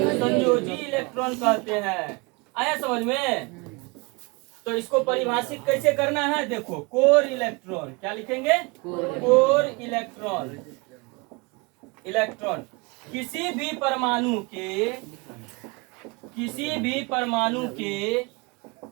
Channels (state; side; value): quieter; left; 27.8 dB